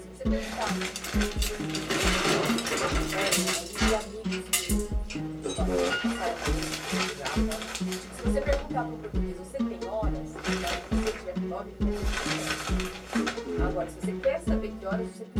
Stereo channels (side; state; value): both; identical; correlation 1.00